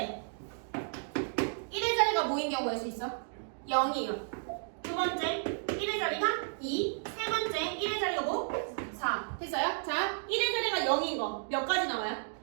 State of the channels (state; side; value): silent; left; digital silence